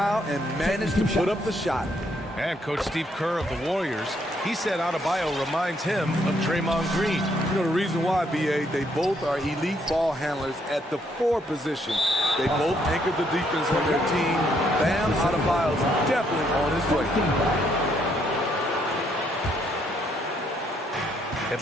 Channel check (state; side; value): normal; both; correlation 0.71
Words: and managed to put up the shot. And Coach Steve Kerr of the Warriors, he said Adebayo reminds him of Draymond Green. You know the reason why, B.A., they both are elite ball handlers at the 4 position. They both anchor the defense on their team. Bam Adebayo's definitely on his way.